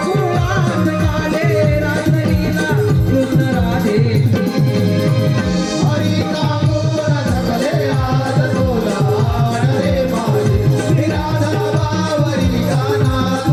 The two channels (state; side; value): identical; both; correlation 1.00